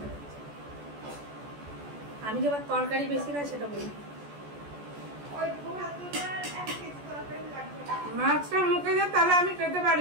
আমি যে আবার তরকারি বেশি খাই সেটা বলি। মাছটা মুখে যায় তাহলে আমি খেতে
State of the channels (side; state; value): left; late; 14 ms